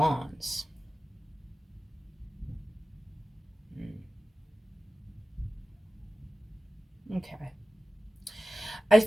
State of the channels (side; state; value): both; normal; correlation 0.95